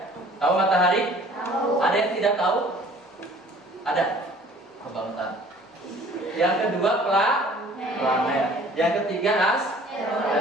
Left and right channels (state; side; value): normal; both; correlation 0.52